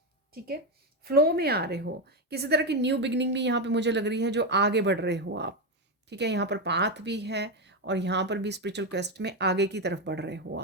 ठीक है। फ्लो में आ रहे हो, किसी तरह की न्यू बिगनिंग भी यहाँ पे मुझे लग रही है, जो आगे बढ़ रहे हो आप, ठीक है। यहाँ पर पाथ भी है और यहाँ पर भी स्पिरिचुअल क्वेस्ट में आगे की तरफ बढ़ रहे हो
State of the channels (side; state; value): both; normal; correlation 0.10